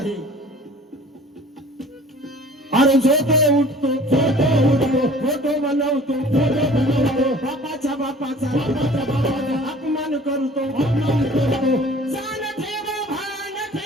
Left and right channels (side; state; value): both; normal; correlation 0.48